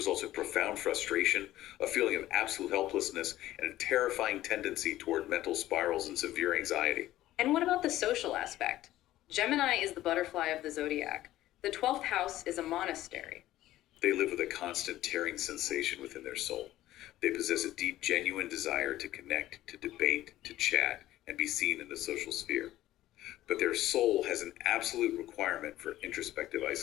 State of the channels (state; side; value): quieter; right; 14.7 dB